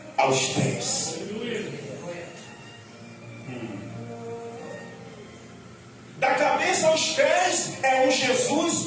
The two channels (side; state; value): both; identical; correlation 1.00